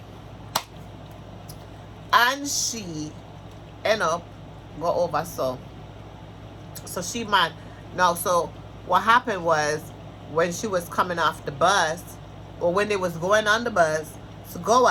and she end up go over so she mad. Now so what happened was when she was coming off the bus or when they was going on the bus to go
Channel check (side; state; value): both; identical; correlation 1.00